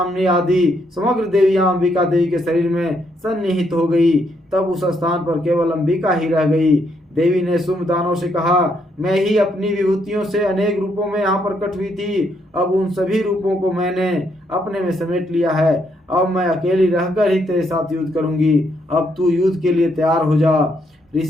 आदि समग्र देवियां अंबिका देवी के शरीर में सन्निहित हो गई। तब उस स्थान पर केवल अंबिका ही रह गई। देवी ने शुंभ दानव से कहा, मैं ही अपनी विभूतियों से अनेक रूपों में यहाँ प्रकट हुई थी। अब उन सभी रूपों को मैंने अपने में समेट लिया है। अब मैं अकेली रहकर ही तेरे साथ युद्ध करूंगी। अब तू युद्ध के लिए तैयार हो जा।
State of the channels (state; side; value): normal; both; correlation 0.75